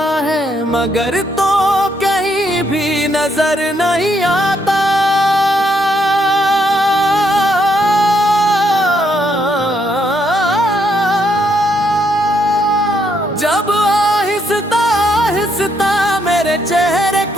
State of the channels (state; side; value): normal; both; correlation 0.74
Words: है, मगर तो कहीं भी नजर नहीं आता। जब आहिस्ता आहिस्ता मेरे चेहरे